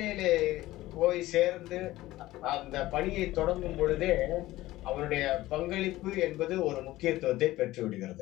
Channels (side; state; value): right; quieter; 16.8 dB